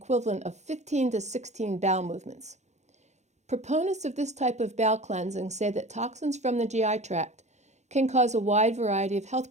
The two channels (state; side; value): late; left; 0.33 ms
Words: of 15 to 16 bowel movements. Proponents of this type of bowel cleansing say that toxins from the GI tract can cause a wide variety of health